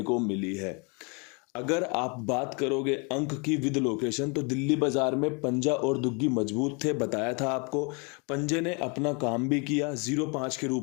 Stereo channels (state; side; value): quieter; right; 33.1 dB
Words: को मिली है। अगर आप बात करोगे अंक की विद लोकेशन, तो दिल्ली बाजार में पंजा और दुग्गी मजबूत थे। बताया था आपको, पंजे ने अपना काम भी किया। 05 के